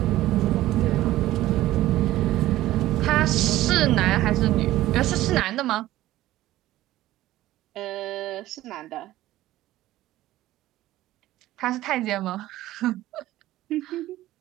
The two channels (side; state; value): left; quieter; 15.4 dB